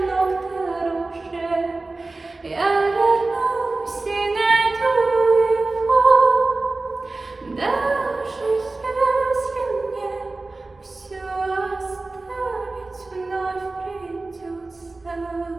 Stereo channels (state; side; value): quieter; left; 3.3 dB